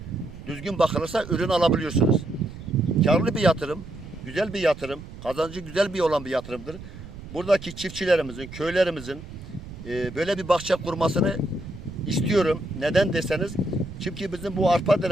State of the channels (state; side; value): noise; right; rumble, 14 dB below the sound